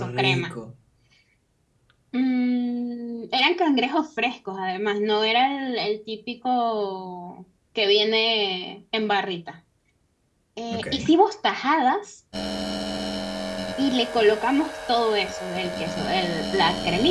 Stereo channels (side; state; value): both; identical; correlation 1.00